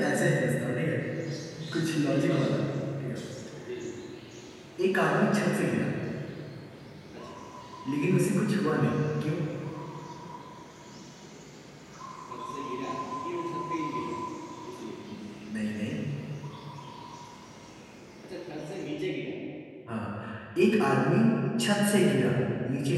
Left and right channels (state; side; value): identical; both; correlation 1.00